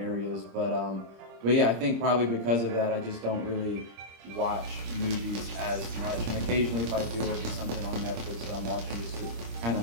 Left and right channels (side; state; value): left; late; 26 ms